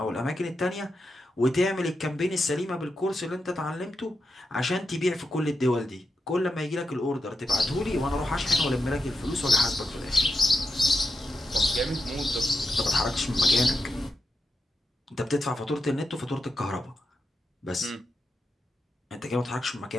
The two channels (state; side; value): normal; both; correlation 0.87